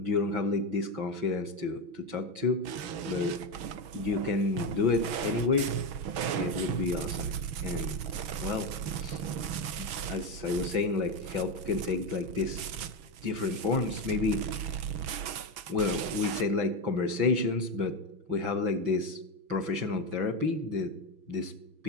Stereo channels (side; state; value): left; late; 6.4 ms